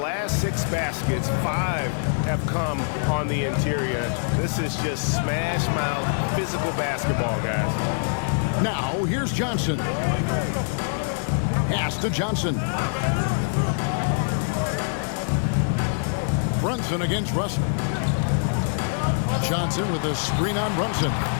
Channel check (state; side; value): silent; right; digital silence